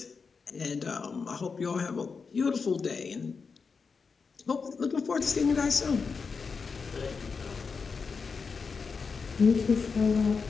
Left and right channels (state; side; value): quieter; right; 5.1 dB